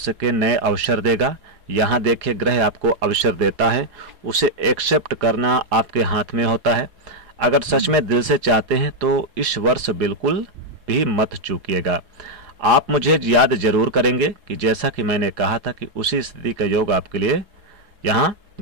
के नए अवसर देगा। यहाँ देखिए, ग्रह आपको अवसर देता है, उसे एक्सेप्ट करना आपके हाथ में होता है। अगर सच में दिल से चाहते हैं तो इस वर्ष बिल्कुल भी मत चूकिएगा। आप मुझे याद जरूर करेंगे कि जैसा कि मैंने कहा था कि उसी स्थिति का योग आपके लिए यहाँ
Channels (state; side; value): late; left; 4.8 ms